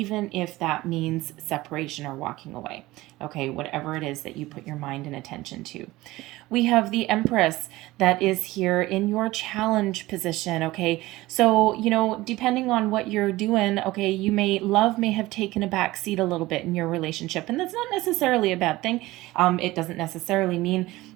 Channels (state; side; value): quieter; left; 18.6 dB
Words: if that means separation or walking away. Okay, whatever it is that you put your mind and attention to. We have the Empress that is here in your challenge position. Okay, so depending on what you're doing, okay, love may have taken a back seat a little bit in your relationship, and that's not necessarily a bad thing. It doesn't necessarily mean